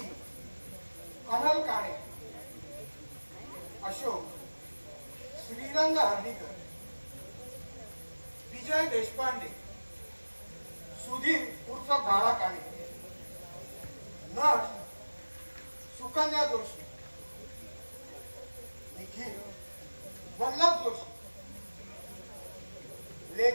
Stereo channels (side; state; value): both; inverted; correlation -1.00